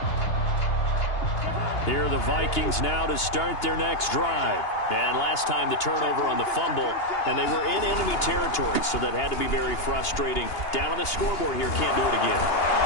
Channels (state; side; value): late; right; 2.8 ms